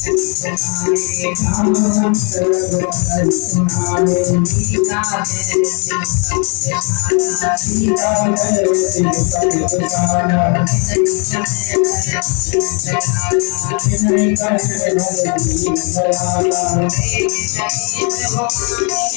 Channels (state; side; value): quieter; right; 37.4 dB